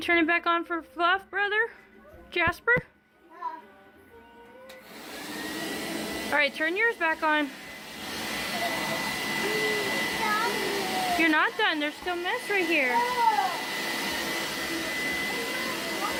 it back on for Fluff, brother? Jasper? Alright, turn yours back on. You're not done. There's still mess right here.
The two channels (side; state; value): both; identical; correlation 1.00